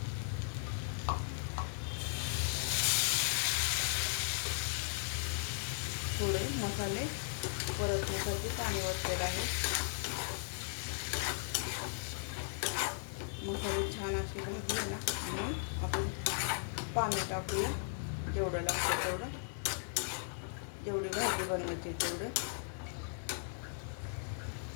थोडे मसाले परतण्यासाठी पाणी ओतलेलं आहे. मसाले छान असे भाजले ना म्हणून आपण पाणी टाकूया. जेवढं लागतं तेवढं. जेवढी भाजी बनवायची तेवढं.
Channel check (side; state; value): right; silent; 53 dB below the other